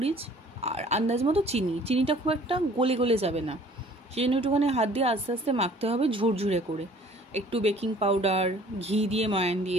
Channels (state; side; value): normal; both; correlation 0.53